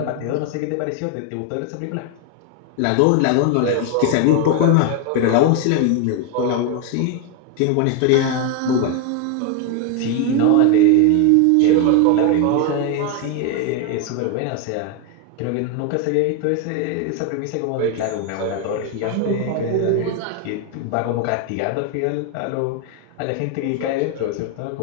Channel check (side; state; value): both; different; correlation 0.01